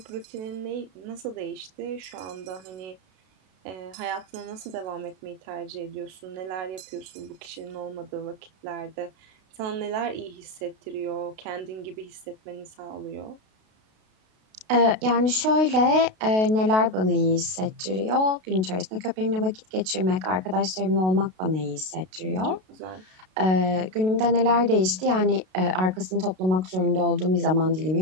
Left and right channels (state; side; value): late; left; 32 ms